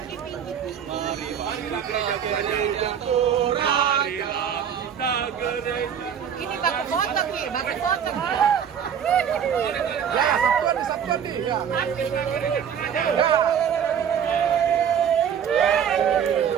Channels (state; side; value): quieter; left; 8.3 dB